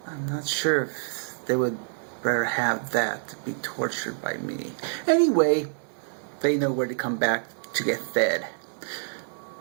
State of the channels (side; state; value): left; silent; digital silence